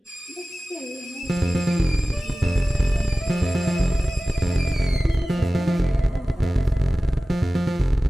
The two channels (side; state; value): both; normal; correlation 0.97